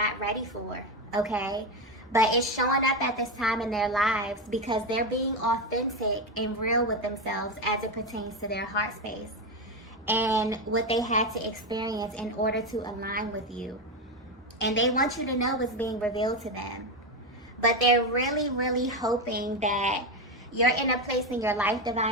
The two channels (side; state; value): both; normal; correlation 0.12